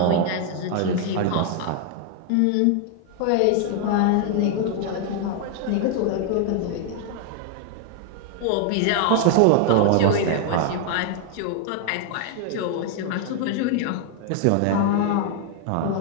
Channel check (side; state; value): both; different; correlation 0.00